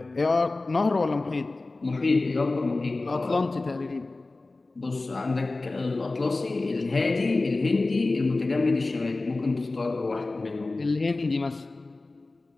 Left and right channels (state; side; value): quieter; right; 3.3 dB